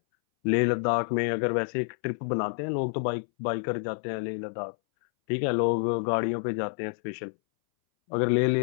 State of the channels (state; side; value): silent; right; 59 dB below the other